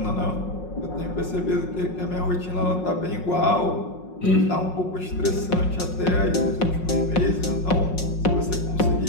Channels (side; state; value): right; late; 5.5 ms